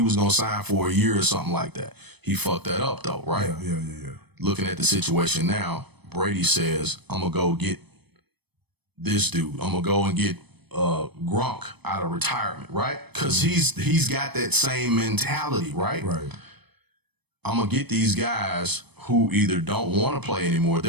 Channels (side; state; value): left; late; 0.98 ms